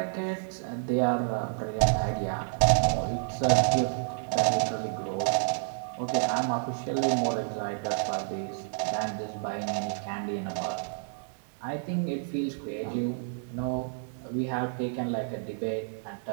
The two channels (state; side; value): silent; left; 58 dB below the other